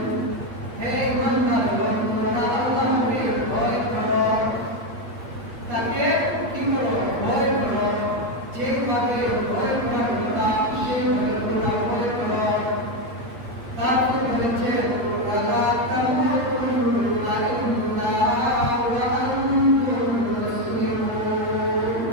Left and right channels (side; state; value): left; late; 8.8 ms